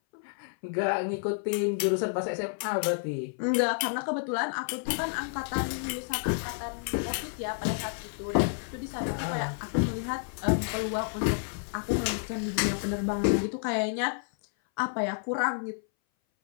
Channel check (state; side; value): silent; right; 58 dB below the other